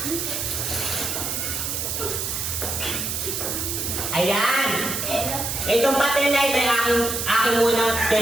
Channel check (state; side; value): noise; right; hiss, 2 dB below the sound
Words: Ayan. Itong patin na ito ay aking munang